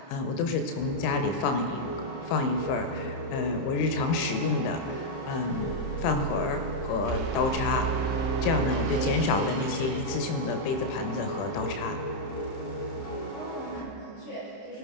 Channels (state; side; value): late; right; 31 ms